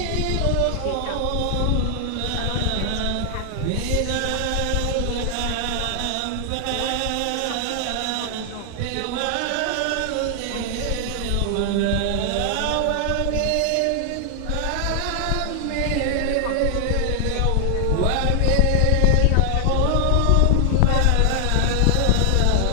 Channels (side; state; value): both; different; correlation 0.00